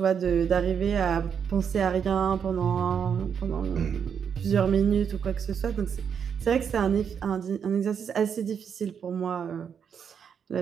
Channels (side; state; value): left; quieter; 7.4 dB